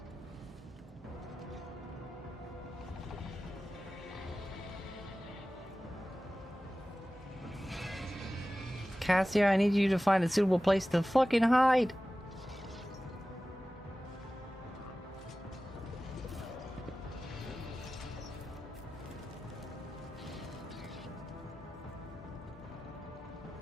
Cassia, I need you to find a suitable place to fucking hide!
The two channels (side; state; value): both; normal; correlation 0.95